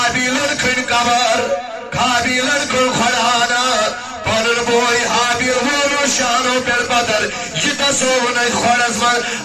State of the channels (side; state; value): both; identical; correlation 1.00